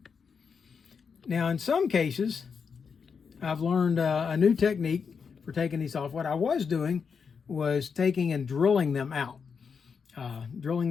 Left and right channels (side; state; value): right; quieter; 6.0 dB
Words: Now, in some cases, I've learned a new technique for taking these off. What I was doing was taking and drilling them out. Drilling